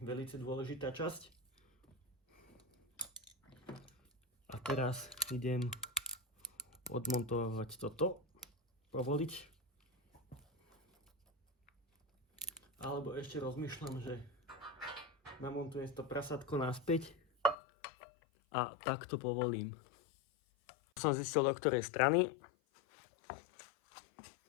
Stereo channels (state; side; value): drops out; right; at 17.6 s